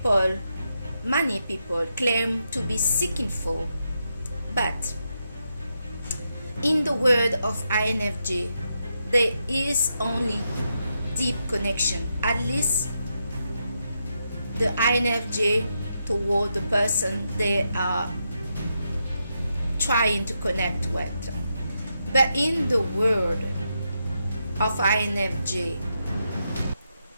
many people, claim to be seeking for. But in the word of INFJ, there is only deep connection, at least the INFJ toward the person they are trying to connect with. But in the word of INFJ,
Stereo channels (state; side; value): inverted; both; correlation -0.83